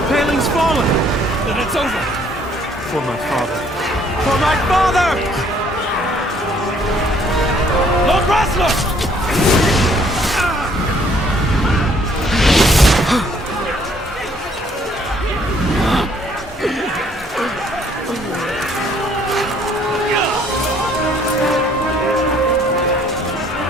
paling's fallen! Then it's over! For my father. For my father! Lord Rasler!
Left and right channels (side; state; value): both; normal; correlation 0.62